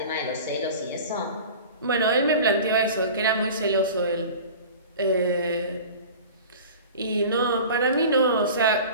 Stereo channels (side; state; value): both; inverted; correlation -0.38